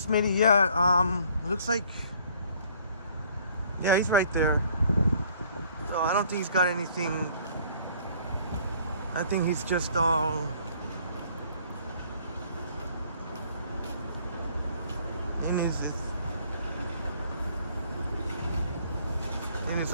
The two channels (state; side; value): inverted; both; correlation -0.58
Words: Smitty, yeah, looks like, yeah, he's right there. So I don't think he's got anything. I think he's just all in his